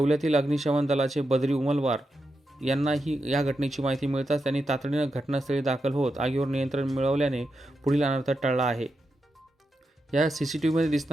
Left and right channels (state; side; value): normal; both; correlation 0.87